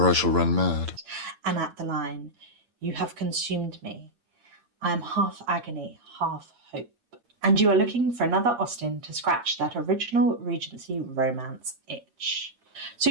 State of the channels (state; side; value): late; left; 8.7 ms